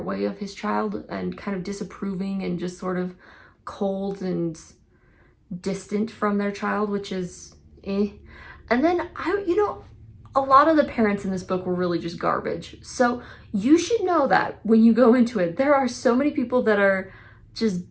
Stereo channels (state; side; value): identical; both; correlation 1.00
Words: way of his child and kind of disapproving and just sort of cold and distant from their child, which is eh. And then a lot of the parents in this book were really just garbage. So you should know that when you go into it, there are so many people that are just